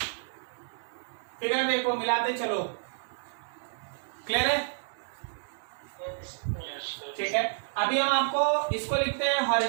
फिगर देखो, मिलाते चलो, क्लियर है? ठीक है। अभी हम आपको इसको लिखते हैं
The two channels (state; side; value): silent; left; digital silence